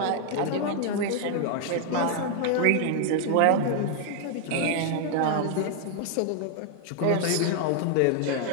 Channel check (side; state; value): both; different; correlation 0.00